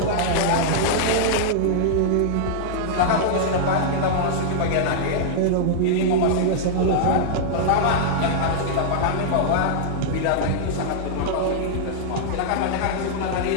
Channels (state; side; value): different; both; correlation -0.02